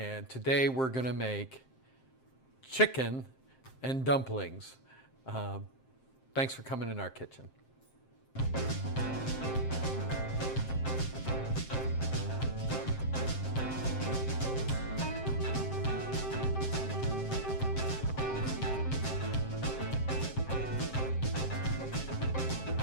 today we're gonna make chicken and dumplings. Thanks for coming in our kitchen.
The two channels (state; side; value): late; right; 7.6 ms